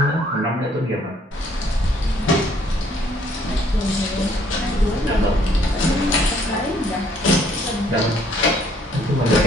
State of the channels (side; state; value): both; normal; correlation 0.64